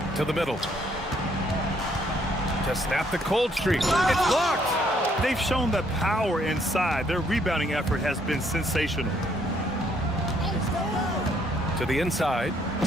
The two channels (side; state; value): both; normal; correlation 0.68